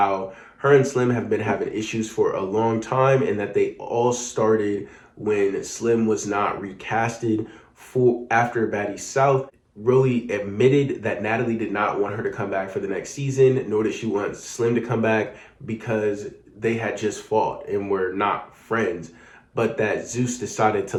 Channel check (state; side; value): identical; both; correlation 1.00